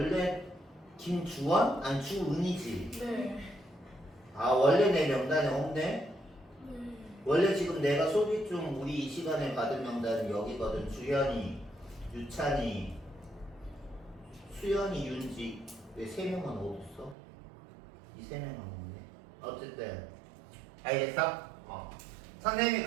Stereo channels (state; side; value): drops out; left; at 17.2 s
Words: 김주원? 아니 주은이지. 네. 원래 내 명단에 없네? 네. 원래 지금 내가 소개 중 우리 이 시간에 받은 명단은 여기거든. 주현이, 유찬이, 수연이, 윤지. 왜 3명은 어딨어? 이 3명은 없네. 어쨌든 알겠어? 선생님이